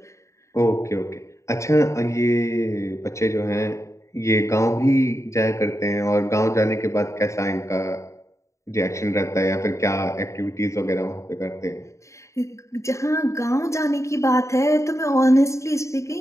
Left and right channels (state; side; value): late; right; 0.14 ms